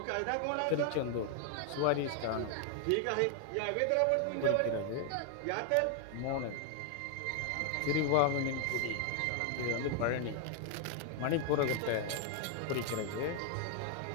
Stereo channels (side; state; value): both; different; correlation 0.00